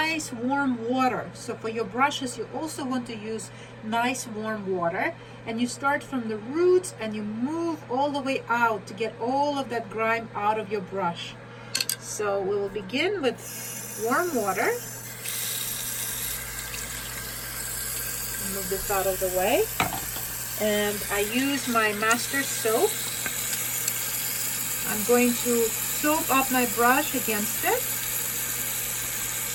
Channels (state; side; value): identical; both; correlation 1.00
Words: warm water. So for your brushes, you also want to use nice warm water, and you start from the roots and you move all the way out to get all of that grime out of your brush. So we will begin with warm water. Move this out of the way, and I use my master soap. I'm going to soap up my brush against it.